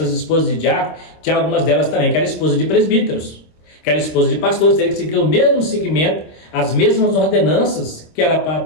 esposas de diácono, tinha algumas delas também que eram esposas de presbíteros, que eram esposas de pastores, teriam que seguir o mesmo segmento, as mesmas ordenanças, que era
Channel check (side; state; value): right; late; 26 ms